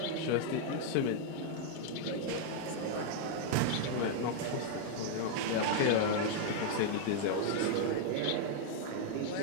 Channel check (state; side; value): different; both; correlation 0.00